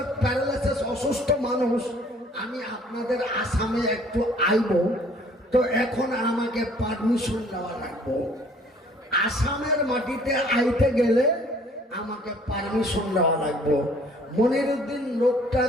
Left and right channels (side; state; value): both; normal; correlation 0.56